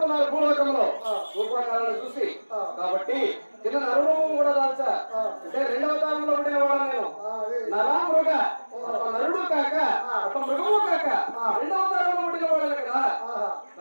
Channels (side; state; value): both; inverted; correlation -1.00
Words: భూలోకంలో రూపాకాలను చూసి. కాబట్టి కింద నరురూపం కూడా దాల్చా. అంటే రెండవ తాళంలో పుట్టిన వాడు నేను. నరామృగ నరుడు కాక ఒక మృగము కాక రెండవ తాళంలో పుట్టిన వాడు కదా.